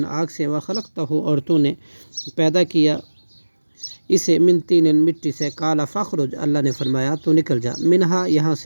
آگ سے، وخلقتہ اور تو نے پیدا کیا اسے، من طین مٹی سے، قال فاخرج اللہ نے فرمایا تو نکل جا، منہا یہاں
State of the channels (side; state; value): both; inverted; correlation -1.00